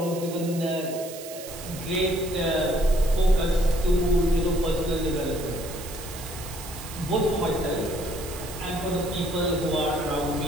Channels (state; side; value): noise; right; hiss, 13 dB below the sound